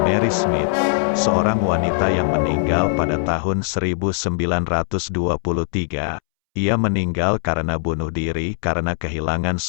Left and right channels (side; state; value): right; silent; 65 dB below the other